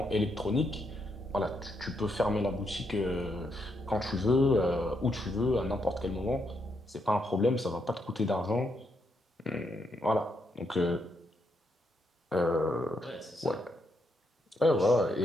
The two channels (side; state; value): both; normal; correlation 0.79